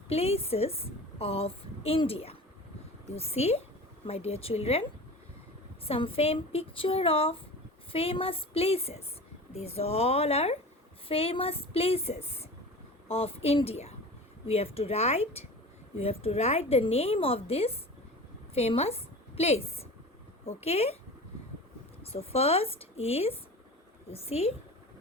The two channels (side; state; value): both; normal; correlation 0.35